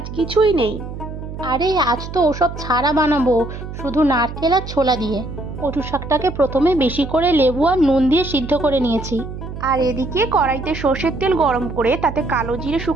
কিছুই নেই। আরে আজ তো ওসব ছাড়া বানাবো, শুধু নারকেল আর ছোলা দিয়ে। কচু শাকটাকে প্রথমে বেশি করে লেবু আর নুন দিয়ে সিদ্ধ করে নিয়েছি। আর এদিকে কড়াইতে সর্ষের তেল গরম করে তাতে কালো জিরে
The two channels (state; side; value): noise; right; hum, 9 dB below the sound